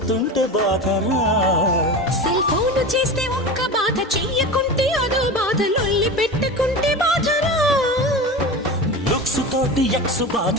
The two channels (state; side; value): normal; both; correlation 0.28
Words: బాధరా సెల్ ఫోన్ చేస్తే ఒక్క బాధ చెయ్యకుంటే అదో బాధ లొల్లి పెట్టుకుంటే బాధరా లుక్స్ తోటి ఎక్స్ బాధ